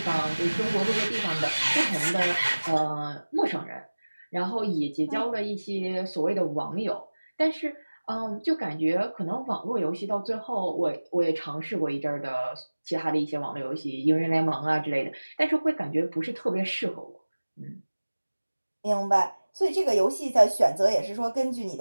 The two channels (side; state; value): both; inverted; correlation -1.00